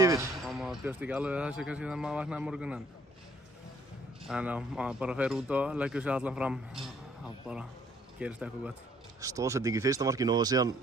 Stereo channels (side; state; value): both; normal; correlation 0.62